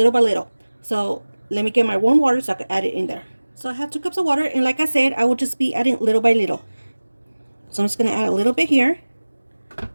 by little. So let me get my warm water so I can add it in there. So I have 2 cups of water, and like I said, I will just be adding little by little. So I'm just going to add a little bit here,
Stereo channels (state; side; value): inverted; both; correlation -1.00